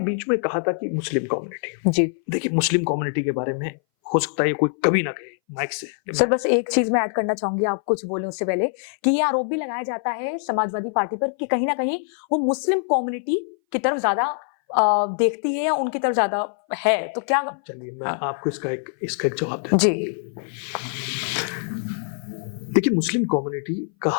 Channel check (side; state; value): right; silent; 60 dB below the other